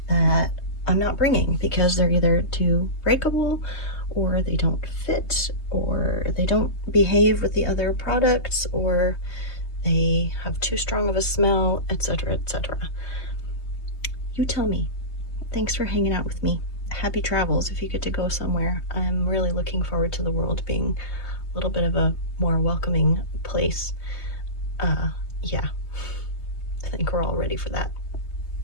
that I'm not bringing because they're either too breakable, or they don't fit, or they don't behave with the other products, or they have too strong of a smell, etc., etc. You tell me. Thanks for hanging out with me. Happy travels if you get to go somewhere. I'm really looking forward to the world being a little bit of a more welcoming place. Yeah, I think we're all ready for that.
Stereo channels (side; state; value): right; late; 3.2 ms